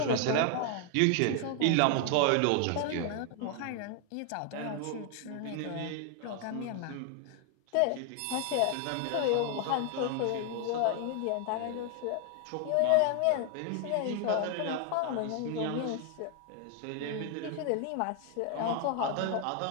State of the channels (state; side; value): different; both; correlation 0.00